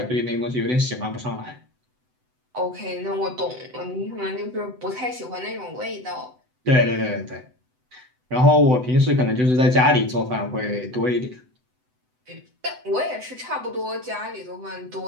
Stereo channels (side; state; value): left; late; 7.9 ms